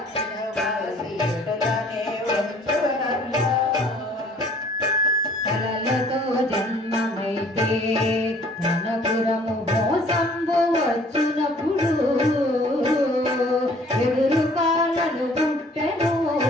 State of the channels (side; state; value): both; normal; correlation 0.56